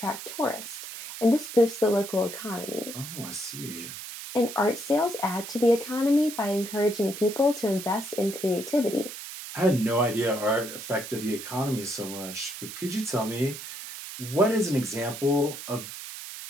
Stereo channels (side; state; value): right; noise; hiss, 10 dB below the sound